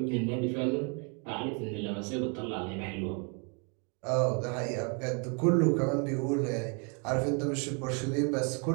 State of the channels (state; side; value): quieter; left; 36.4 dB